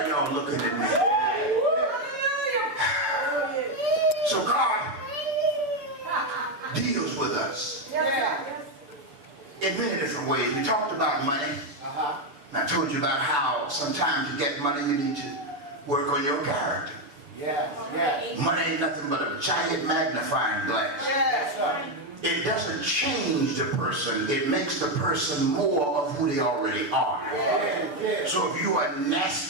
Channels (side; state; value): left; late; 6.9 ms